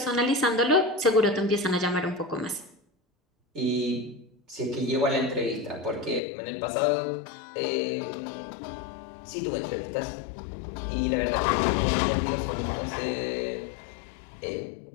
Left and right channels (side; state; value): right; drops out; at 6.2 s